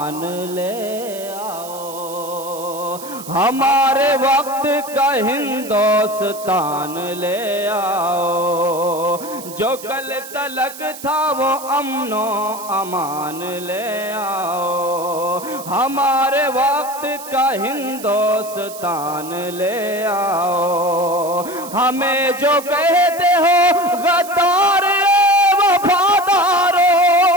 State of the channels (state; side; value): noise; right; hiss, 14 dB below the sound